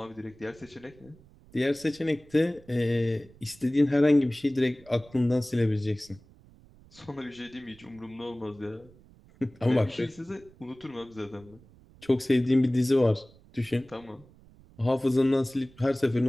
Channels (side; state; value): right; noise; rumble, 25 dB below the sound